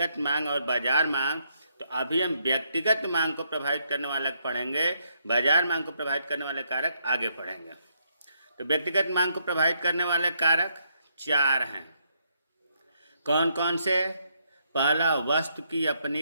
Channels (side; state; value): both; inverted; correlation -0.75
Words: मांग और बाजार मांग। तो अभी हम व्यक्तिगत मांग को प्रभावित करने वाला पढ़ेंगे, बाजार मांग को प्रभावित करने वाले कारक आगे पढ़ेंगे। तो व्यक्तिगत मांग को प्रभावित करने वाले कारक 4 हैं। कौन कौन से? पहला, वस्तु की